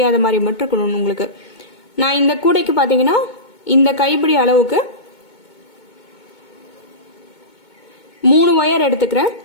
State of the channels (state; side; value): late; right; 2.2 ms